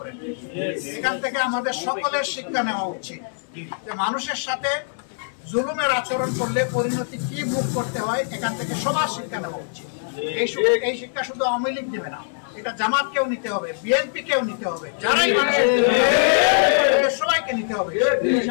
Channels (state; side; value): silent; right; digital silence